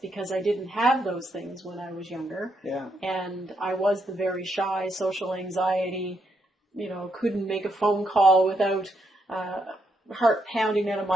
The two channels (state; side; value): normal; both; correlation 0.78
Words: I didn't have those things when I was younger. Yeah. And I was the very shy, social anxiety, couldn't make a phone call without heart pounding out of